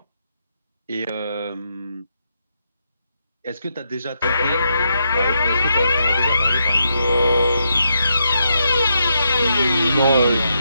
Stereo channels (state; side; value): inverted; both; correlation -0.81